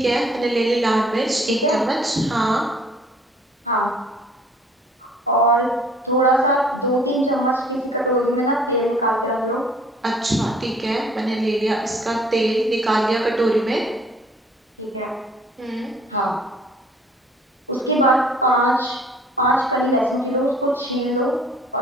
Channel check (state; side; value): normal; both; correlation 0.55